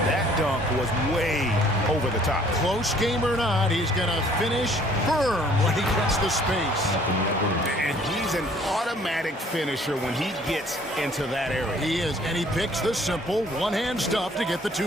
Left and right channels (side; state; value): both; normal; correlation 0.58